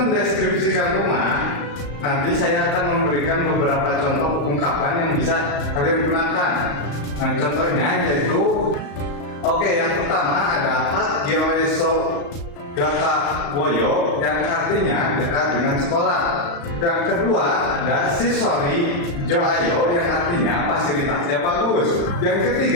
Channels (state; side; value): late; right; 35 ms